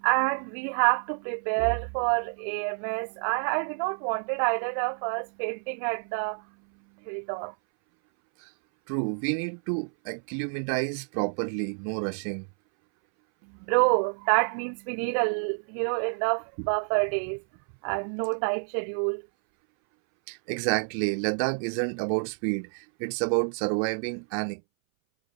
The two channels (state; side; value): silent; left; 59 dB below the other